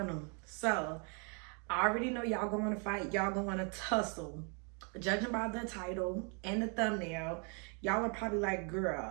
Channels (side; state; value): left; quieter; 36.6 dB